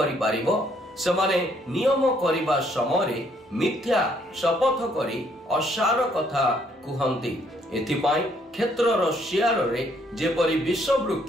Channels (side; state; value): both; normal; correlation 0.68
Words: पारिबो? समाने नियम करिबा समय मिथ्या शपथ करी असार कथा कुहंती। एथिपाई क्षेत्रर शियार रे जेपरि विष